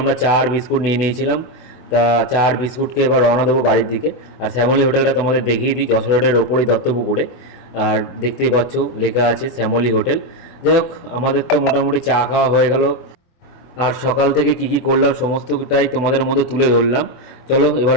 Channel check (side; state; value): right; late; 24 ms